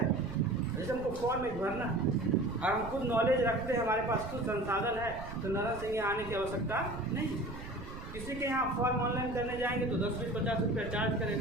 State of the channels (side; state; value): right; noise; rumble, 11 dB below the sound